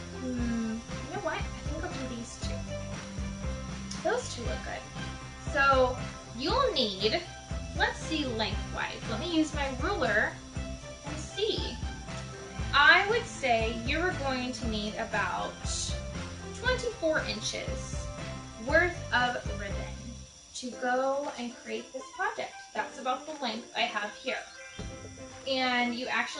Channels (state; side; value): identical; both; correlation 1.00